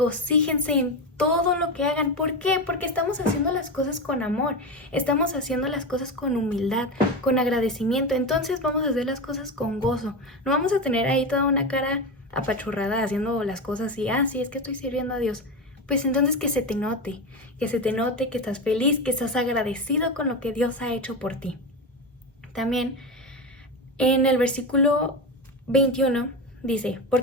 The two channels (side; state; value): both; normal; correlation 0.18